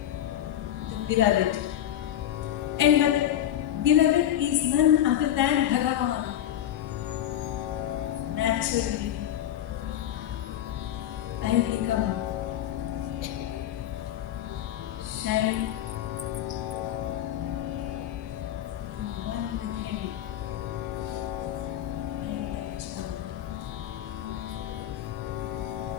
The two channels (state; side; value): quieter; right; 11.6 dB